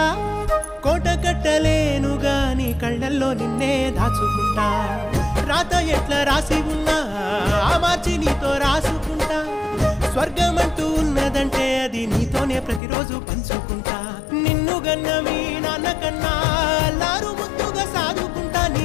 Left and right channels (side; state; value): right; drops out; at 12.8 s